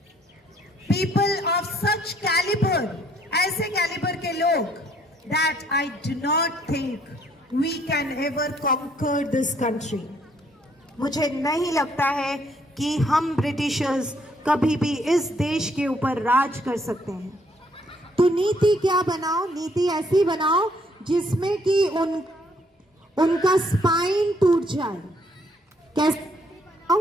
पीपल ऑफ सच कैलिबर, ऐसे कैलिबर के लोग, that I do not think we can ever conquer this country. मुझे नहीं लगता है कि हम ब्रिटिशर्स कभी भी इस देश के ऊपर राज कर सकते हैं। तो नीति क्या बनाओ? नीति ऐसी बनाओ जिसमें कि उनका स्पाइन टूट जाए।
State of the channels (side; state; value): both; normal; correlation 0.66